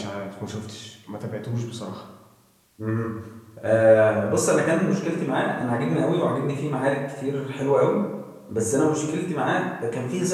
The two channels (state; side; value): identical; both; correlation 1.00